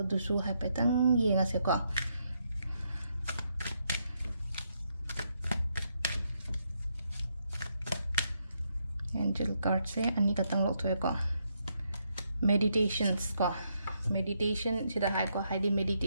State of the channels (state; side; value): inverted; both; correlation -0.78